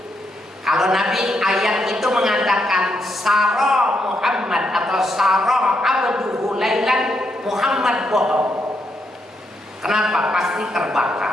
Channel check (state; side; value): normal; both; correlation 0.79